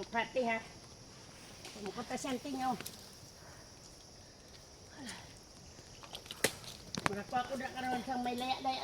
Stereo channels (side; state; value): both; identical; correlation 1.00